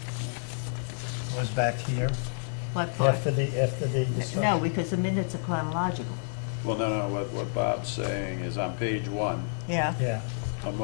was back here What part? after the discussion? No, because the minutes are chronological. Well, no, what Bob's saying is on page 1, Yeah. Yeah, a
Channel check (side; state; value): right; silent; digital silence